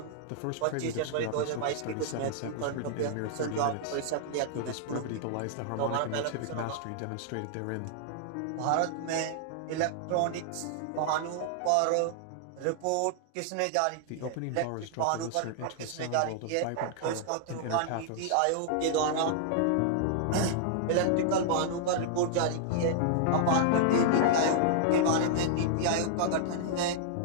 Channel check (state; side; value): different; both; correlation -0.01